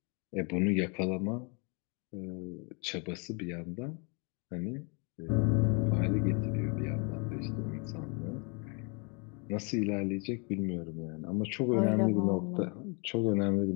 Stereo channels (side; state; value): right; quieter; 34.2 dB